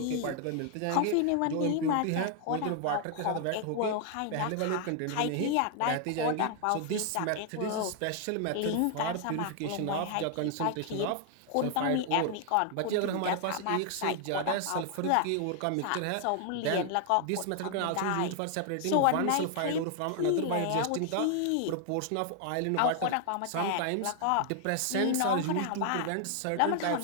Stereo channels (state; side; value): different; both; correlation 0.00